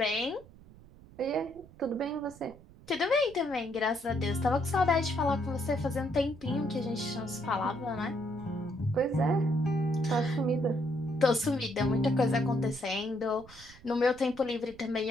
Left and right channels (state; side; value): noise; right; rumble, 22 dB below the sound